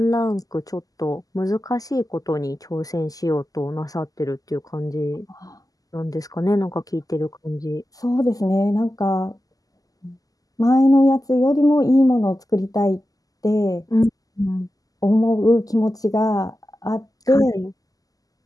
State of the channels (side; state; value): right; late; 0.17 ms